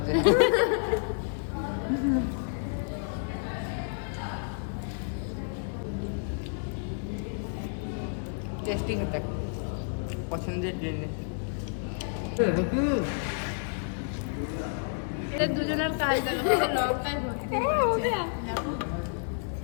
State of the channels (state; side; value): silent; right; digital silence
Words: টেস্টিং এটা পছন্দের জিনিস। এদের দুজনের কাজ দেখো, পুরো লঙ্কায় ভর্তি হয়েছে। দেখো